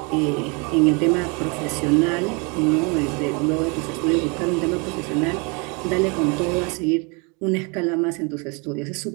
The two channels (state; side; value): quieter; left; 31.5 dB